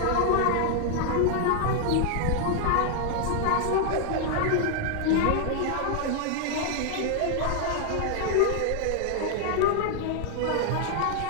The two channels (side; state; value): both; different; correlation 0.00